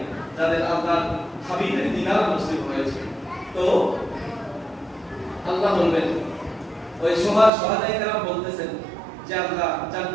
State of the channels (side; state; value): left; drops out; at 7.5 s